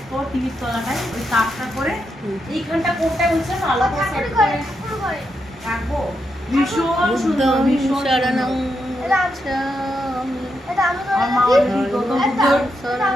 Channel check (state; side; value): normal; both; correlation 0.83